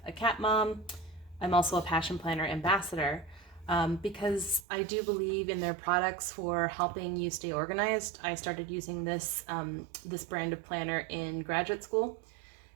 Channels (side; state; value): left; drops out; at 4.7 s